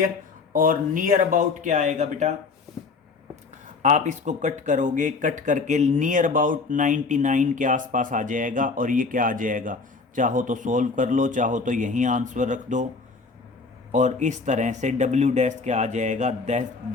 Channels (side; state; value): right; quieter; 4.3 dB